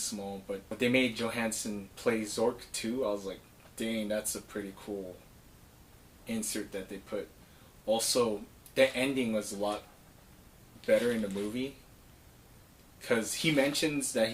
but they made Johansson play Zork too. I was like, dang, that's a pretty cool insert that they put. Also, the ending was a lot better in the movie, because he mentions that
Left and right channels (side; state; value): both; identical; correlation 1.00